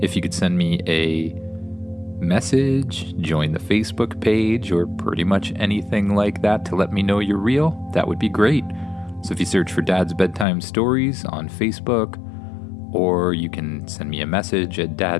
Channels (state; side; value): drops out; right; at 10.5 s